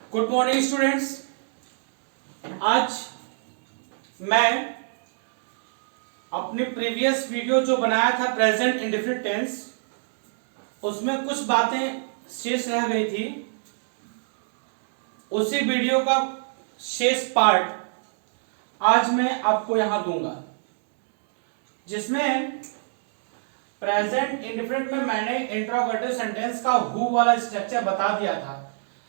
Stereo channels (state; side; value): silent; left; digital silence